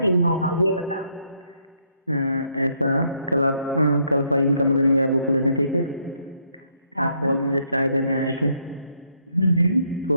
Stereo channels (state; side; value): inverted; both; correlation -0.72